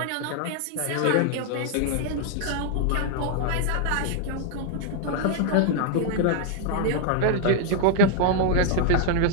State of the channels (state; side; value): different; both; correlation 0.00